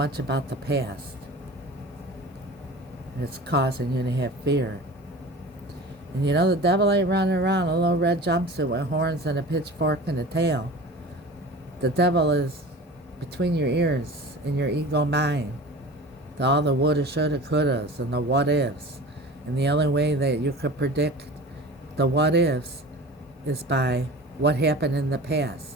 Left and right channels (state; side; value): normal; both; correlation 0.37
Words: about the past. And it's causing you to have fear. And you know the devil ain't running around in a little red jumpsuit with horns and a pitchfork and a tail. The devil is between your ears in your ego mind. All the woulda, shoulda, couldas, and the what ifs. And the only way that you could predict the what ifs is by what happened in the